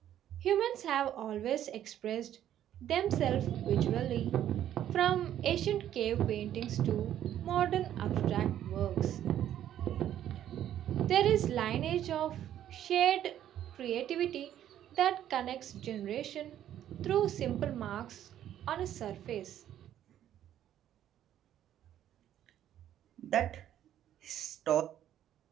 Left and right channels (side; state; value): left; quieter; 11.2 dB